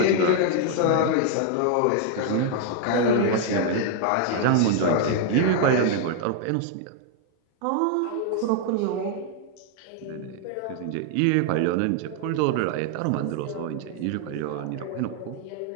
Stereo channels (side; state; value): both; different; correlation 0.00